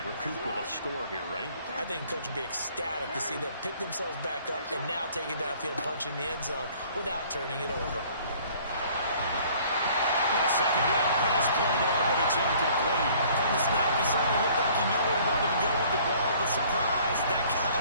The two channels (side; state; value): both; inverted; correlation -0.56